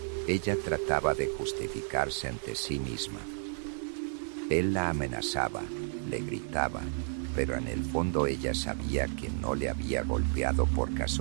Ella trataba de justificarse ante sí misma. Él la amenazaba, le gritaba, pero en el fondo ella sabía que no le había golpeado por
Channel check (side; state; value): left; silent; digital silence